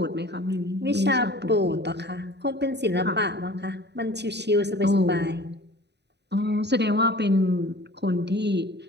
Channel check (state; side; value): late; left; 0.50 ms